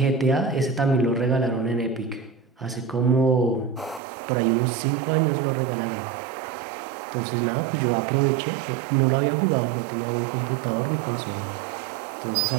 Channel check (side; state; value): left; drops out; at 4.0 s